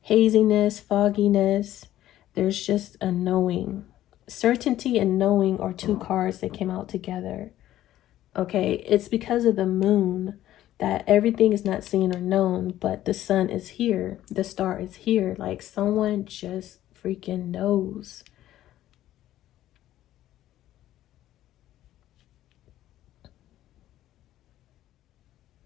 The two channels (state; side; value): quieter; right; 13.5 dB